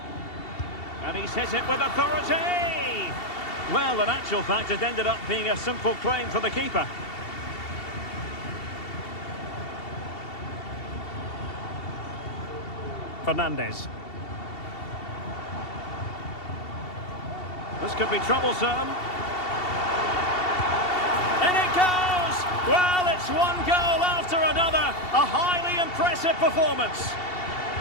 And he's hit it with authority! Well, in actual fact, it ended up being a simple claim for the keeper. Fernandez. This could be troublesome. And it goes! Well, it's one goal after another. A highly impressive performance.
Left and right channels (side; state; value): right; late; 2.7 ms